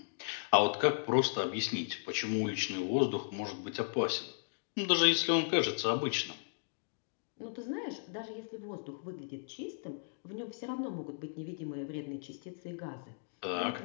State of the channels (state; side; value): silent; right; digital silence